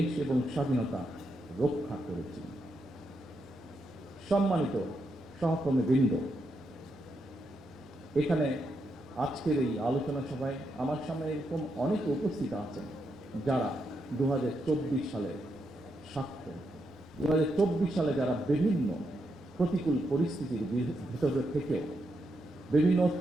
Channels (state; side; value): normal; both; correlation 0.82